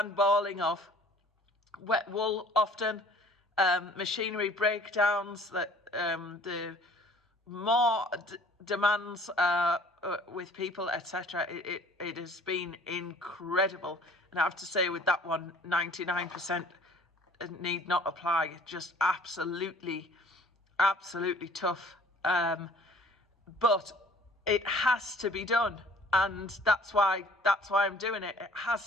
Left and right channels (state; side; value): normal; both; correlation 0.53